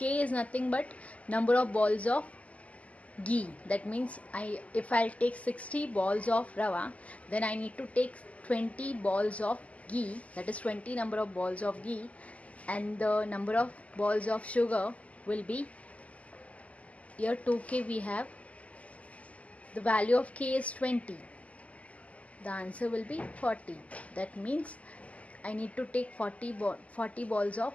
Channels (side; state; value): right; late; 0.070 ms